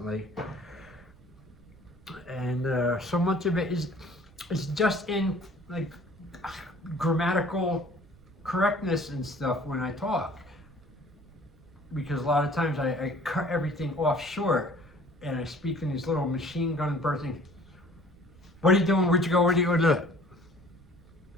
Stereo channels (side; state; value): right; noise; rumble, 25 dB below the sound